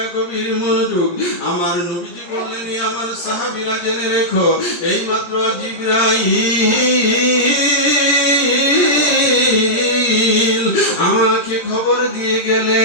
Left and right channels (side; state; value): right; late; 17 ms